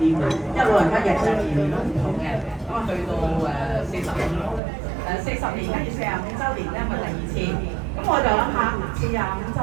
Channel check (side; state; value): left; drops out; at 4.6 s